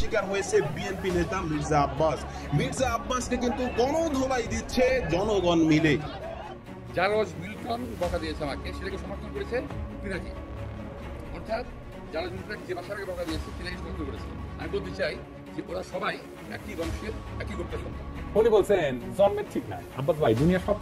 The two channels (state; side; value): identical; both; correlation 1.00